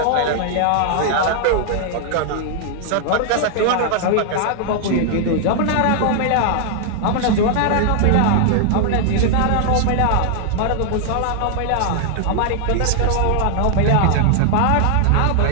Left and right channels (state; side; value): different; both; correlation 0.00